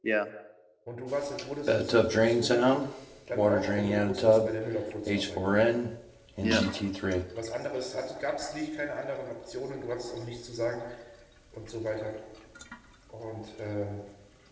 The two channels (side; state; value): both; identical; correlation 1.00